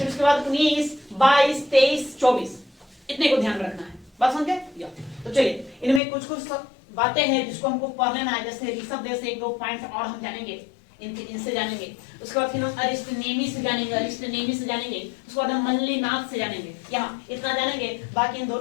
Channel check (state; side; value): drops out; right; at 6.0 s